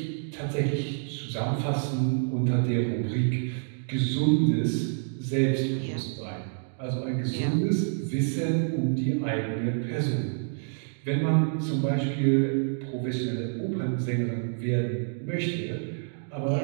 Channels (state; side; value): silent; left; digital silence